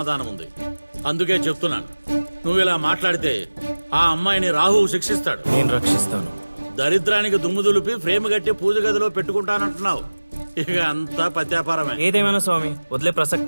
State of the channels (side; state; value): both; inverted; correlation -1.00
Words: ఉంది. అందుకే చెప్తున్నాను. నువ్వు ఇలా మాట్లాడితే ఆ అమ్మాయిని రాహువు శిక్షిస్తాడు. నేను రక్షిస్తాను. దరిద్రానికి దుమ్ము దులిపి ఫ్రేమ్ కట్టి పూజ గదిలో పెట్టుకుంటానంటున్నావు. ఇక అంతా పత్యాపారమే. ఏదేమైనా స్వామి వదిలే